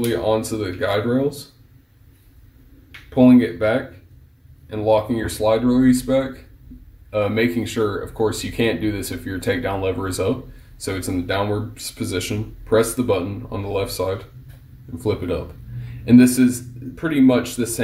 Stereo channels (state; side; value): identical; both; correlation 1.00